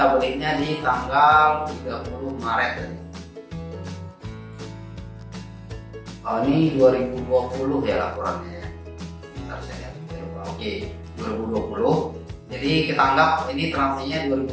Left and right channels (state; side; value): identical; both; correlation 1.00